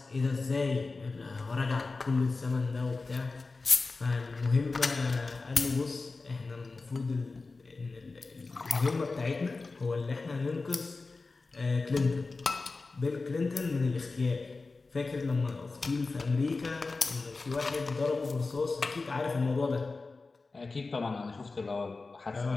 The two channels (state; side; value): quieter; right; 3.8 dB